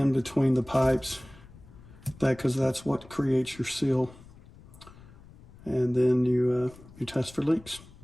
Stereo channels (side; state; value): left; noise; rumble, 21 dB below the sound